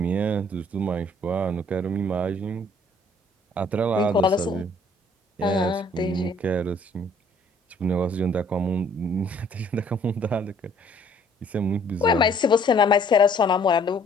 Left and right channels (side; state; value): both; normal; correlation 0.60